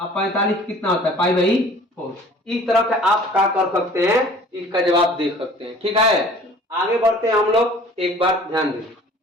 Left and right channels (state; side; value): normal; both; correlation 0.49